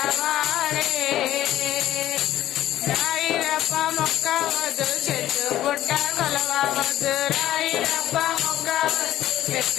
రాయిరప్ప మొక్కవద్దు చెట్టు పుట్ట కొలవవద్దు రాయిరప్ప మొక్కవద్దు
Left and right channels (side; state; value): right; quieter; 13.3 dB